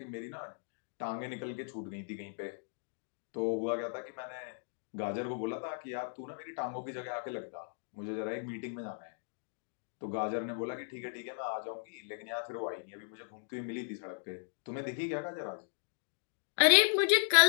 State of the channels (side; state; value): right; silent; digital silence